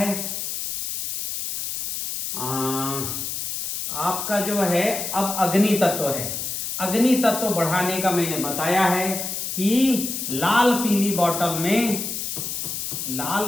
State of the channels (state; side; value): noise; left; hiss, 4 dB below the sound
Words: आपका जो है अब अग्नि तत्व है। अग्नि तत्व बढ़ाने का मैंने बताया है कि लाल पीली